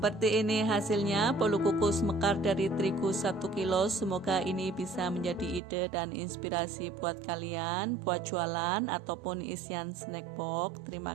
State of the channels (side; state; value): left; drops out; at 5.6 s